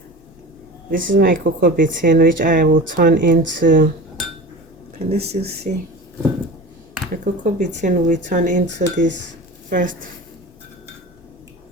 This is my cocoa betaine, which I will turn into, can you still see? The cocoa betaine will turn into this first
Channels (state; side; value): normal; both; correlation 0.33